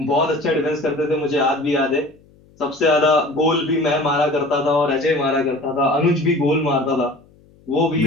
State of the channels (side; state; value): left; noise; hum, 29 dB below the sound